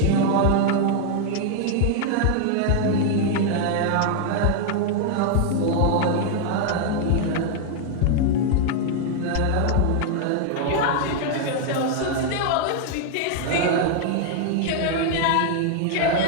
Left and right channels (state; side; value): different; both; correlation 0.00